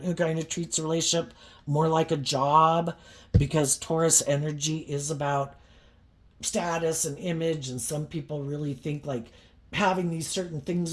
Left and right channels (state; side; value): identical; both; correlation 1.00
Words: who kind of treats a relationship more like a job, because Taurus energy is about status and image, and some people really think like having these certain